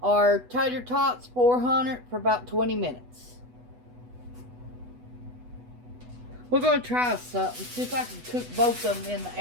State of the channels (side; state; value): left; late; 8.1 ms